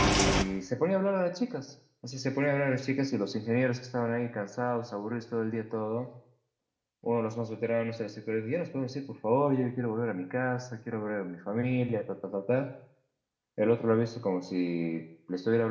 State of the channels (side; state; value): both; identical; correlation 1.00